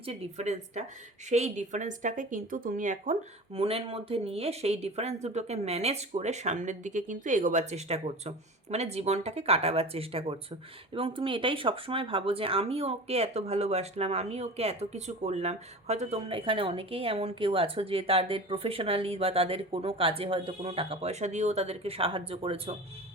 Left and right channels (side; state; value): both; normal; correlation 0.35